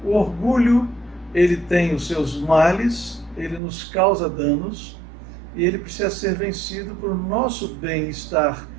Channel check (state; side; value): drops out; left; at 3.6 s